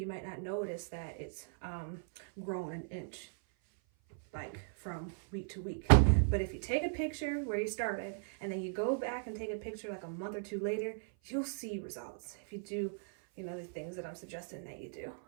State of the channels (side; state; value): left; silent; 53 dB below the other